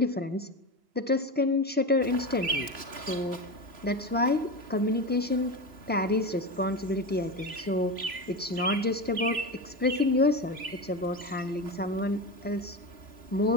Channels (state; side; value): late; left; 3.0 ms